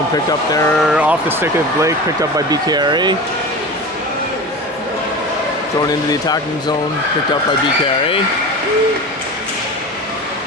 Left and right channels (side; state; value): both; normal; correlation 0.31